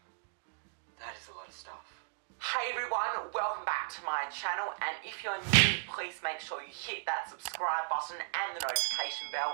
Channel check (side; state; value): left; silent; digital silence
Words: Hey everyone, welcome back to my channel, and if you're new, please make sure you hit that subscribe button and the notification